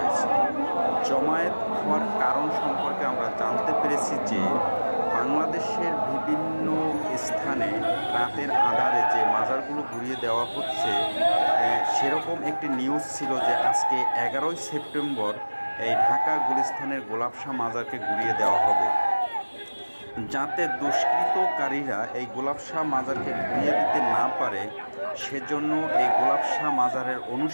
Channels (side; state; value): both; inverted; correlation -1.00